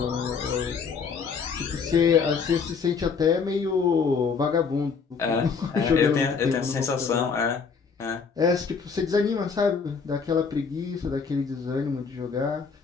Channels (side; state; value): right; quieter; 5.6 dB